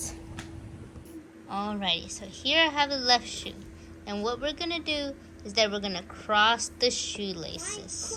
Alrighty, so here I have the left shoe. And what we're going to do is that we're going to cross the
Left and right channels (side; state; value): both; identical; correlation 1.00